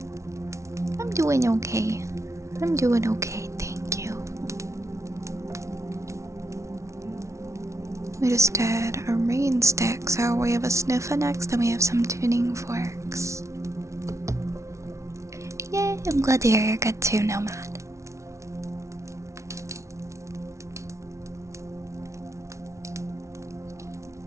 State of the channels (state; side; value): late; left; 0.14 ms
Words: I'm doing okay. I'm doing okay, thank you. We just did a rain stick, so we have a sniffer next, and we have some tuning forks. Yay, I'm glad to hear you're good too, Nomad.